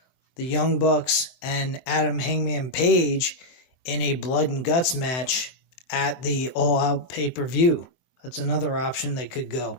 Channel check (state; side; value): late; right; 23 ms